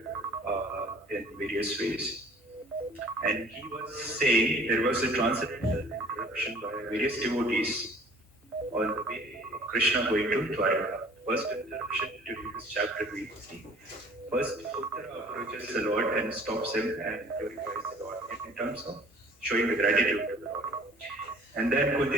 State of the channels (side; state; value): both; normal; correlation 0.51